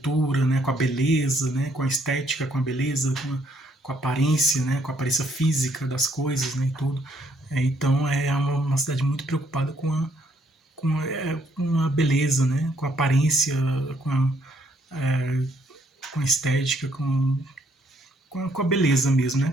né? Com a beleza, né? Com a estética, com a beleza, com a aparência, né? Com a aparência física das coisas, né? E tudo. Então é uma cidade muito preocupada com a beleza, né? Com a aparência, com é, com a estética, com a beleza mesmo, né?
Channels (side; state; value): both; normal; correlation 0.69